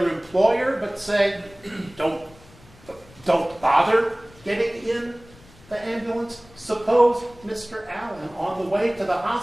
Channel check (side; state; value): left; noise; rumble, 25 dB below the sound